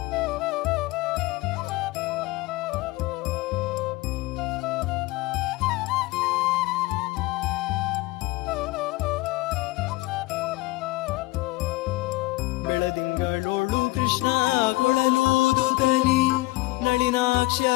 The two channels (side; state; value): right; quieter; 20.7 dB